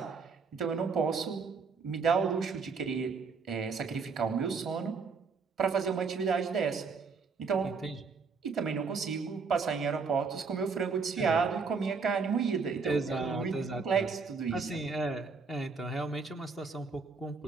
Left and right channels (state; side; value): quieter; left; 4.9 dB